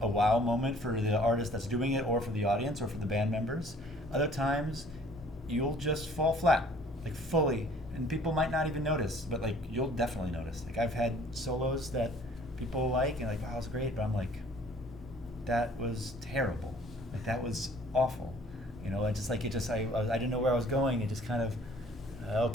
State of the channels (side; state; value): both; normal; correlation 0.55